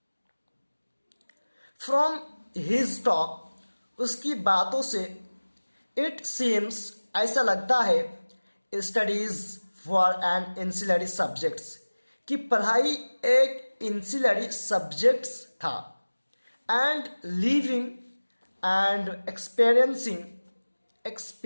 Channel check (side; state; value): both; inverted; correlation -1.00